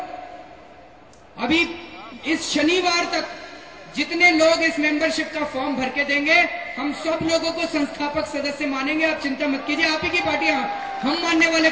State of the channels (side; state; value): both; identical; correlation 1.00